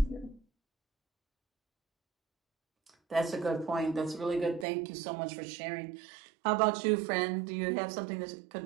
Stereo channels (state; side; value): drops out; left; at 4.7 s